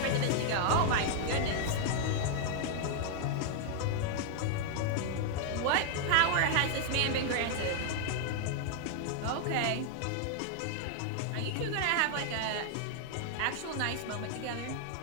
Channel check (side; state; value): both; different; correlation 0.00